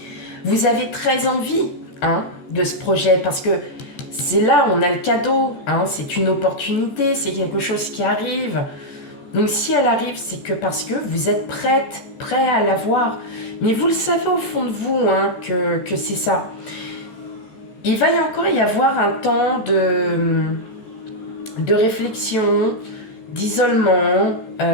très envie hein, de ce projet parce que c'est là où on a le cadeau. Hein, c'est une opportunité, c'est quelque chose qui arrive. Donc si elle arrive, c'est que parce que vous êtes prêt à l'avoir. Mais vous le savez au fond de vous hein, que c'est ça. Il va encore y avoir un temps de réflexion, d'isolement.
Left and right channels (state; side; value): late; right; 14 ms